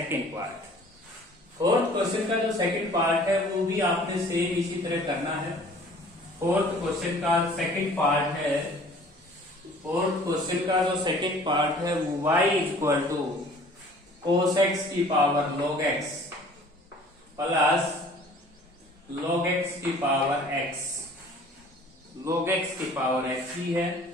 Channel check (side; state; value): both; normal; correlation 0.50